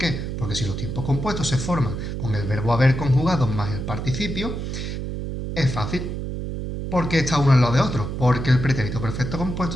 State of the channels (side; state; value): right; noise; hum, 5 dB below the sound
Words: Porque si los tiempos compuestos se forman con el verbo haber conjugado más el participio, es fácil. ¿Por qué está uno al lado de otro? Porque el pretérito perfecto